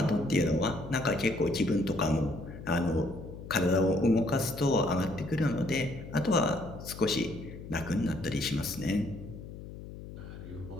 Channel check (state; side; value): noise; left; hum, 12 dB below the sound